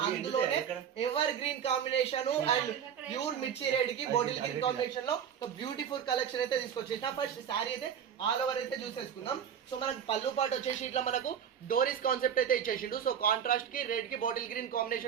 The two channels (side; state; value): left; quieter; 8.3 dB